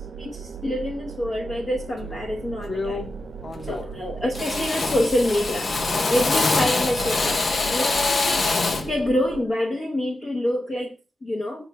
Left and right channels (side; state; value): both; normal; correlation 0.89